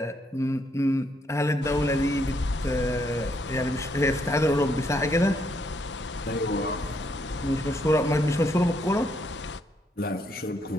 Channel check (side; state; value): both; normal; correlation 0.74